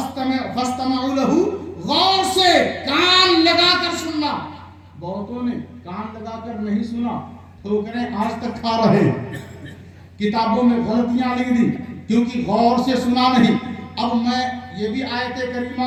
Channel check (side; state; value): both; identical; correlation 1.00